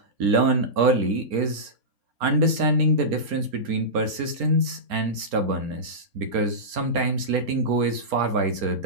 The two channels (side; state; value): left; late; 4.4 ms